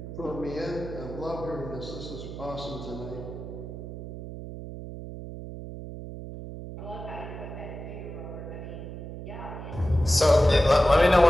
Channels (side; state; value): right; noise; hum, 10 dB below the sound